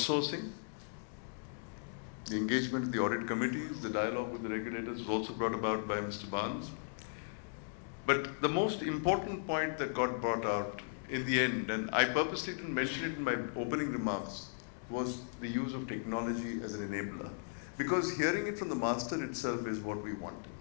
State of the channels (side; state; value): right; silent; digital silence